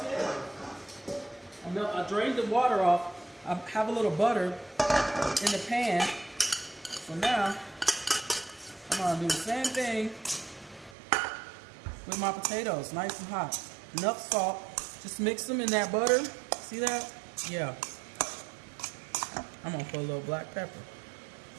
I drained the water off. I have a little butter in the pan. So now, I'm going to do the same thing with my potatoes. Nice and hot. Enough salt. Just mix them in that butter. See that? Yeah. I'm going to put a little black pepper.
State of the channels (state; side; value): drops out; left; at 11.0 s